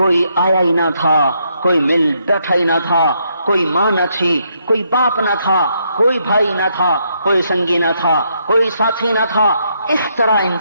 آیا ہی نہ تھا، کوئی مل بیٹھا ہی نہ تھا، کوئی ماں نہ تھی، کوئی باپ نہ تھا، کوئی بھائی نہ تھا، کوئی سنگی نہ تھا، کوئی ساتھی نہ تھا۔ اس طرح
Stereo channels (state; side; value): inverted; both; correlation -0.76